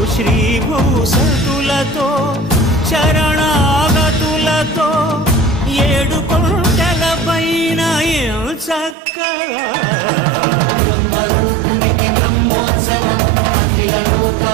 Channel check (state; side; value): drops out; left; at 9.0 s